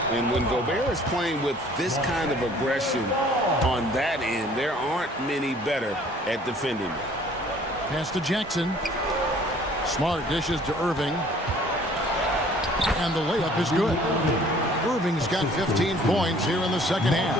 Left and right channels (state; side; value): normal; both; correlation 0.54